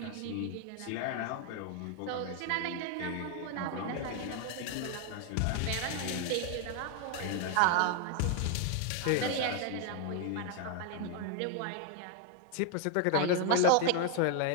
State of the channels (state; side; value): different; both; correlation 0.01